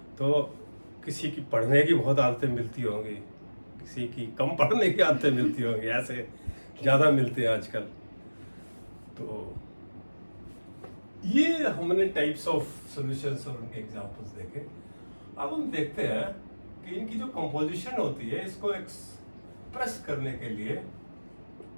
तो किसी की पढ़ने की बहुत आदतें मिलती होंगी, किसी की कम पढ़ने की आदतें मिलती होंगी, ऐसे ज़्यादा मिलते हैं आजकल। तो ये हमने टाइप्स ऑफ सॉल्यूशंस और उनके एग्जांपल्स देखे। अब हम देखते हैं कि इनकी जो कंपोजिशन होती है, इसको एक्सप्रेस करने के लिए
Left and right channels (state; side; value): inverted; both; correlation -1.00